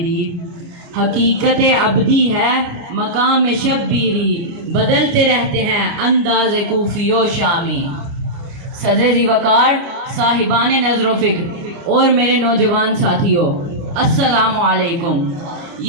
حقیقت ابدی ہے مقام شبیری، بدلتے رہتے ہیں انداز کوفی و شامی۔ صدر ذی وقار، صاحبان نظر و فکر اور میرے نوجوان ساتھیوں، السلام علیکم۔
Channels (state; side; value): late; left; 29 ms